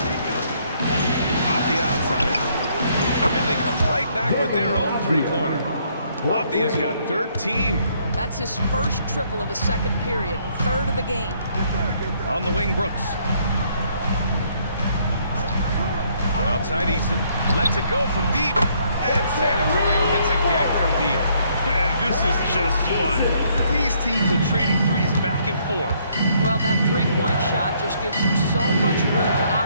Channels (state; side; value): inverted; both; correlation -0.68